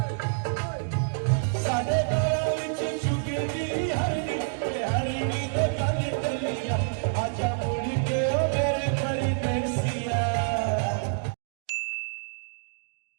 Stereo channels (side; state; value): left; silent; digital silence